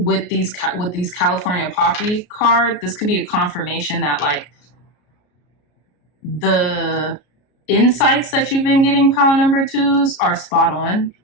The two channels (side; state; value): right; late; 33 ms